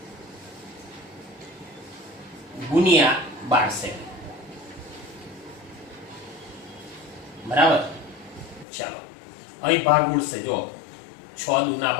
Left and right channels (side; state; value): right; drops out; at 8.7 s